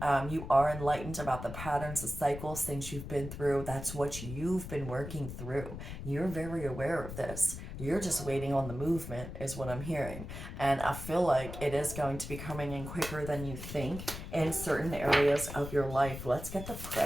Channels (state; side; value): noise; left; rumble, 9 dB below the sound